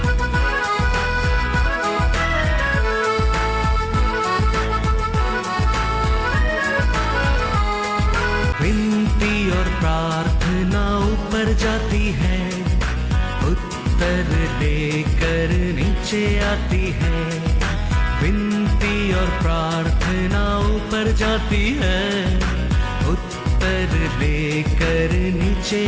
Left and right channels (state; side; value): identical; both; correlation 1.00